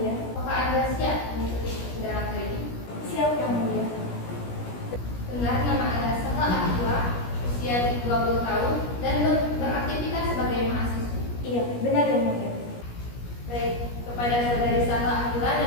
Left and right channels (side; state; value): right; late; 17 ms